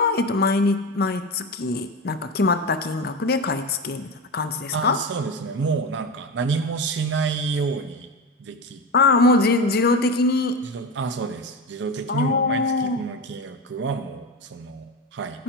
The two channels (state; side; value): normal; both; correlation 0.21